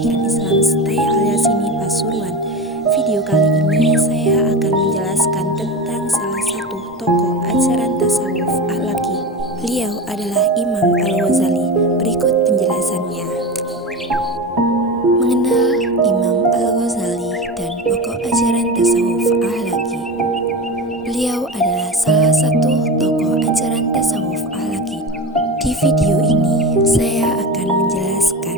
Islam STAI Al-Yasini Pasuruan. Video kali ini saya akan menjelaskan tentang salah satu tokoh ajaran tasawuf akhlaki. Beliau adalah Imam Al-Ghazali. Berikut penjelasannya. Mengenal Imam Al-Ghazali dan pokok ajaran tasawuf akhlaki. Beliau adalah salah satu tokoh ajaran tasawuf akhlaki. Di video ini saya akan menjelaskan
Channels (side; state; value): both; normal; correlation 0.25